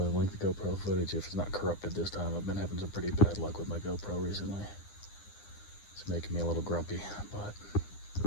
link the GoPro footage if it's not corrupted this time. I've been having some pretty bad luck with my GoPro recently. It's making me a little grumpy, but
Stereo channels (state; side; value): late; right; 9.8 ms